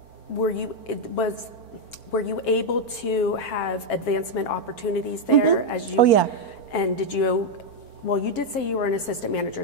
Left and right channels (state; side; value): late; right; 4.4 ms